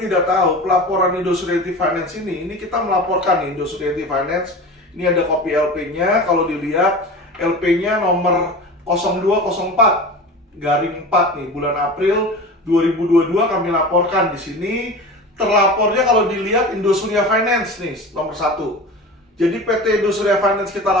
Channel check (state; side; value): normal; both; correlation 0.32